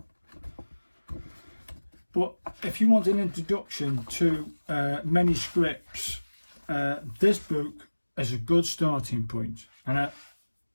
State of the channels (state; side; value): inverted; both; correlation -1.00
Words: But if you want an introduction to many scripts, this book is a good starting point. And